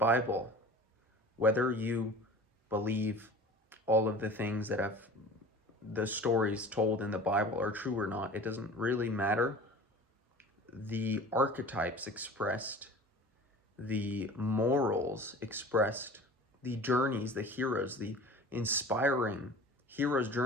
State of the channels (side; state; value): both; normal; correlation 0.40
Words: Whether you believe all of the things that the stories told in the Bible are true or not, it doesn't really matter. The archetypes expressed, the morals expressed, the journeys, the heroes, the inspiring heroes'